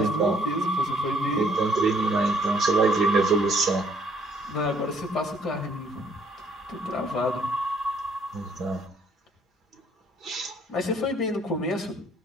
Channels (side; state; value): both; normal; correlation 0.64